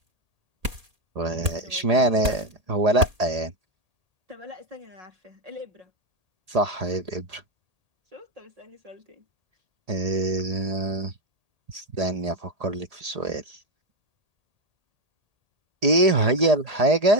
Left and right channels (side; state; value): left; late; 1.8 ms